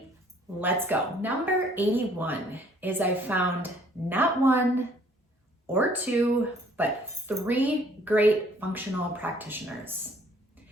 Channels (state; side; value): normal; both; correlation 0.59